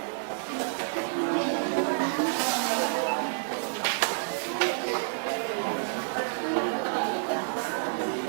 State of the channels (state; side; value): silent; left; 59 dB below the other